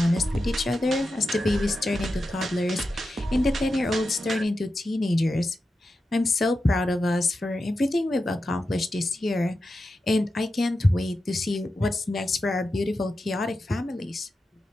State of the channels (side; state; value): both; normal; correlation 0.90